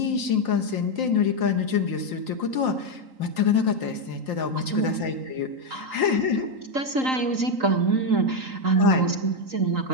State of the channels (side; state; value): left; late; 3.8 ms